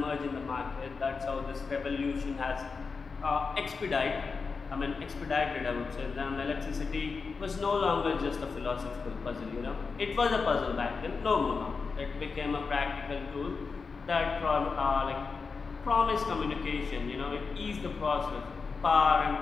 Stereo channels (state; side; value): quieter; right; 4.8 dB